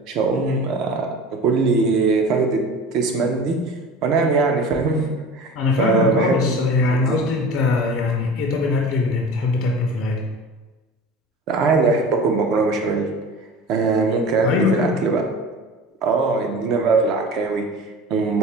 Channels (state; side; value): normal; both; correlation 0.37